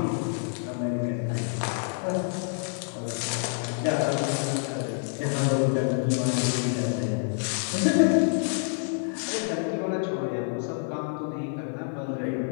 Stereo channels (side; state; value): right; silent; 60 dB below the other